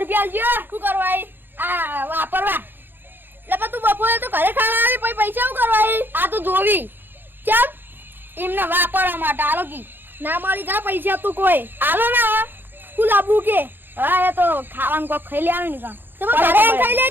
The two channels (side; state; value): left; late; 0.097 ms